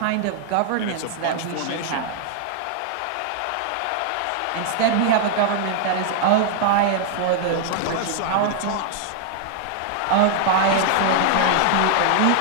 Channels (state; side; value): different; both; correlation 0.00